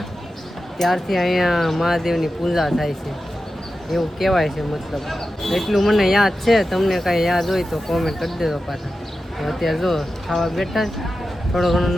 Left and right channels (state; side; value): normal; both; correlation 0.92